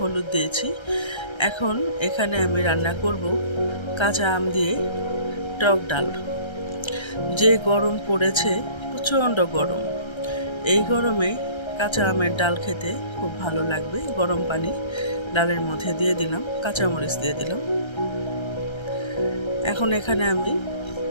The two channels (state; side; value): late; right; 1.3 ms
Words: দিয়েছি। এখন এখানে আমি রান্না করব কাঁচা আম দিয়ে টক ডাল। যে গরম পড়েছে, প্রচণ্ড গরম, এই গরমে কাঁচা আমের ডাল খেতে খুব ভালো লাগবে। গরম পানি ডালের মধ্যে দিয়ে দিলাম, কাঁচামরিচ দিয়ে দিলাম। এখন এখানে আমি